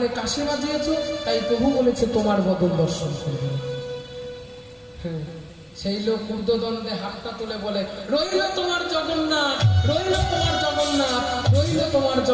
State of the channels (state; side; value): identical; both; correlation 1.00